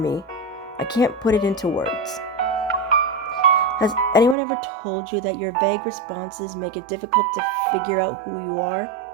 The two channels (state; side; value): drops out; left; at 4.4 s